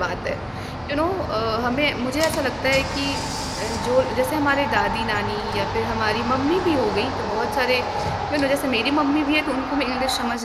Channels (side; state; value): both; identical; correlation 1.00